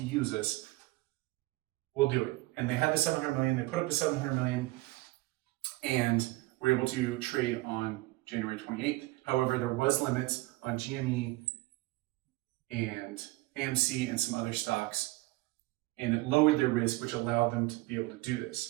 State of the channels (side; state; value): left; quieter; 20.6 dB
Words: use us. We'll do it. And they had the 700 million. They put up the 700 million and were able to trade on January 28th. However, there was limits on GME and AMC and some other stocks and it lowered their risk, which allowed them to be able to do